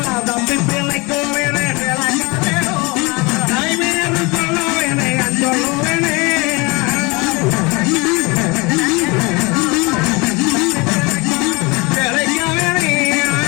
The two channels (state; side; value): quieter; right; 26.4 dB